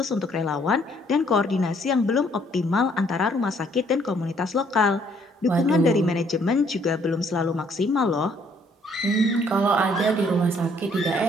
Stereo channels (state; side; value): normal; both; correlation 0.65